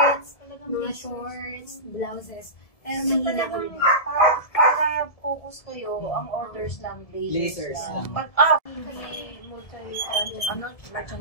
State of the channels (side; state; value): right; late; 1.7 ms